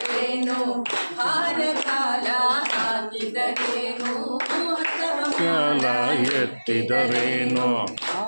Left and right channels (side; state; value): both; inverted; correlation -1.00